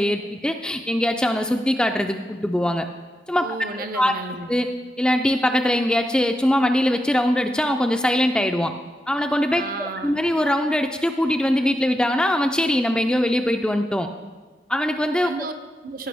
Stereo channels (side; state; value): both; normal; correlation 0.86